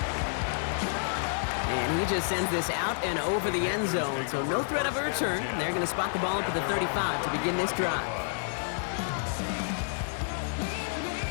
And he just sends this out and over the end zone, so no threat of a return. They're going to spot the ball up at the 35 to begin this drive.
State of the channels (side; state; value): right; silent; digital silence